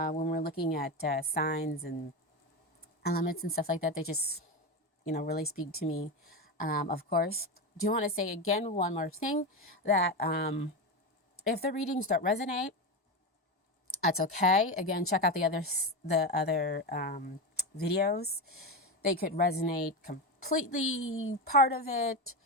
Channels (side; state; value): both; normal; correlation 0.17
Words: we're looking at signs and elements and stuff like that. They just, really speak to me. Of course, do want to say again one more thing, that if the readings don't resonate, that's okay. Again, check out the other videos. They could resonate completely, part of it.